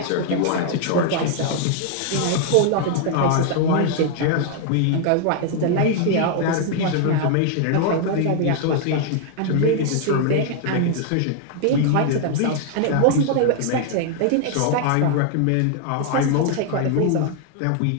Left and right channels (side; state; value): both; different; correlation 0.00